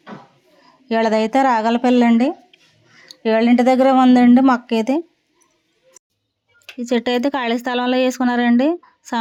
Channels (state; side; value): identical; both; correlation 1.00